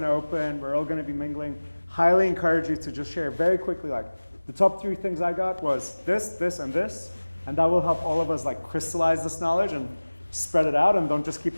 to open. We're all going to be mingling. Highly encourage you to just share very quickly, like, the top 3 things I got was this, this, and this. And that will help all of us, like, crystallize this knowledge and spread it out. And don't just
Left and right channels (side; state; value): both; inverted; correlation -1.00